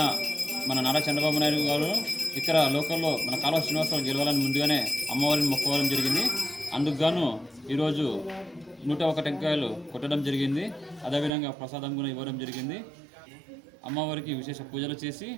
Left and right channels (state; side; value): drops out; left; at 11.3 s